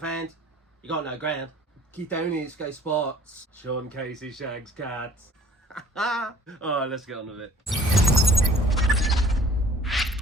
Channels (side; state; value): both; normal; correlation 0.53